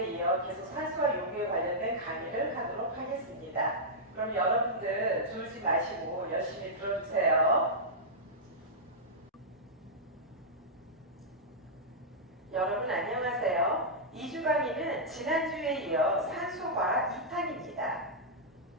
이어 계속 산소와 요구에 관련된 강의를 하도록 하겠습니다. 그럼 여러분들 졸지 마시고 열심히 들어주세요. 여러분 안녕하세요. 2주 강의는 지난주에 이어 산소과 2탄입니다.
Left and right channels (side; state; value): both; normal; correlation -0.10